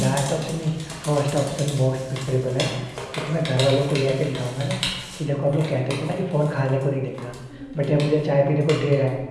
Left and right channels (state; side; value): identical; both; correlation 1.00